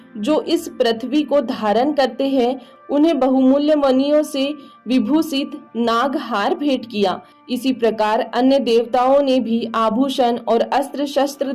जो इस पृथ्वी को धारण करते हैं, उन्हें बहुमूल्य मणियों से विभूषित नागहार भेंट किया। इसी प्रकार अन्य देवताओं ने भी आभूषण और अस्त्र शस्त्र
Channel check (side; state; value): both; identical; correlation 1.00